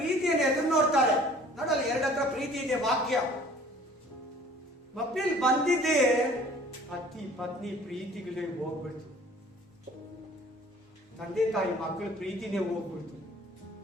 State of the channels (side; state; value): both; normal; correlation 0.51